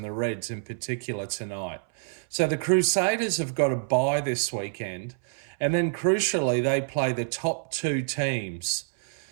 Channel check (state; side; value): silent; left; 60 dB below the other